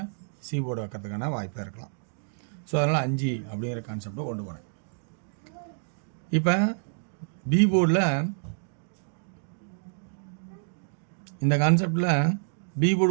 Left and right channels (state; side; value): silent; left; digital silence